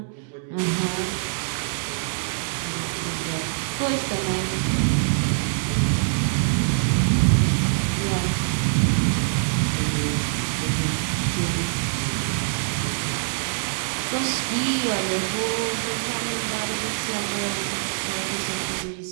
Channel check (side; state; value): left; silent; 62 dB below the other